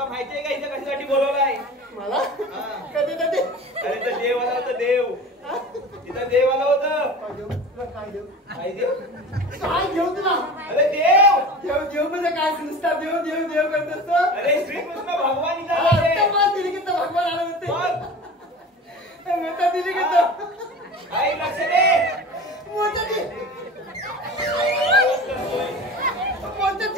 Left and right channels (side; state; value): both; normal; correlation 0.35